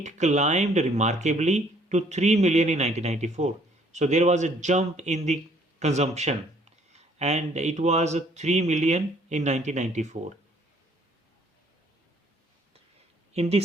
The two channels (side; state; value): both; normal; correlation 0.61